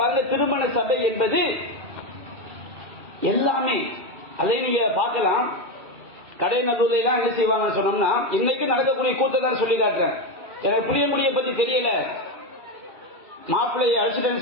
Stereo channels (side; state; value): left; late; 2.4 ms